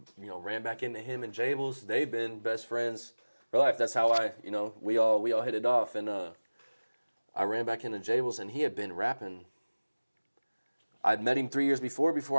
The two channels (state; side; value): inverted; both; correlation -1.00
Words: ran back into him and Jables. They've been best friends for life. That's how we all hit it off, and I ran back into Jables, and he had been rapping. I'd met him 3 years before